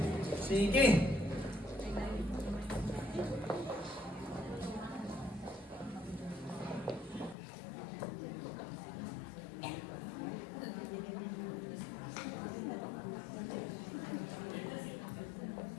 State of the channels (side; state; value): right; drops out; at 7.4 s